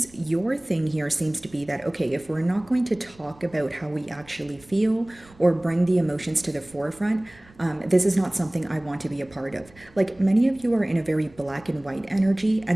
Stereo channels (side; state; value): right; noise; rumble, 26 dB below the sound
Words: Your thing here seems to be that, okay, if we're not going to talk about how we actually feel or bring the emotions to the forefront, this is not something I want to be a part of. Like, many of you are in a very black and white energy,